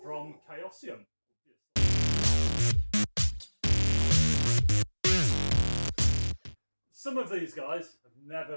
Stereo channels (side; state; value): both; inverted; correlation -1.00